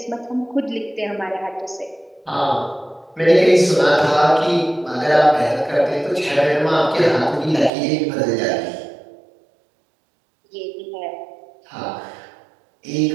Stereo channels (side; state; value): left; drops out; at 7.7 s